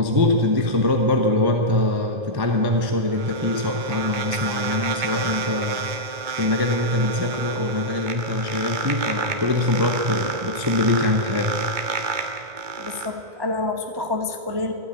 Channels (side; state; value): left; late; 2.2 ms